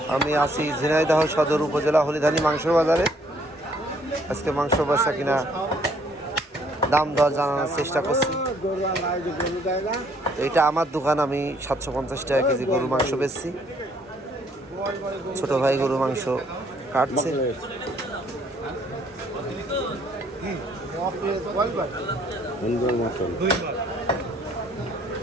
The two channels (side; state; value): both; normal; correlation 0.64